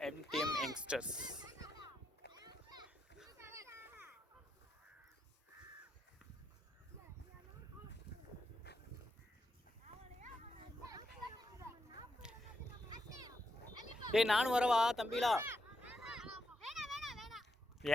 MTM youngsters. ஏய், நானும் வரவா தம்பிலா?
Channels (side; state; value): both; normal; correlation 0.82